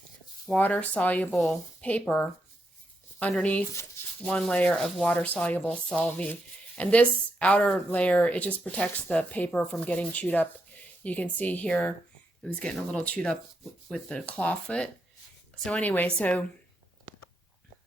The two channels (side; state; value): both; normal; correlation 0.82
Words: water soluble paper underneath 1 layer of water soluble Solvay And this outer layer, it just protects the paper from getting chewed up. You can see here, it was getting a little chewed up with the claw foot. So anyway, sorry,